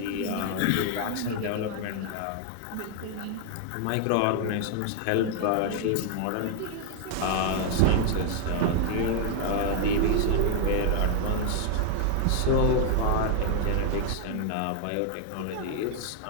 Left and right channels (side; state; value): both; different; correlation 0.00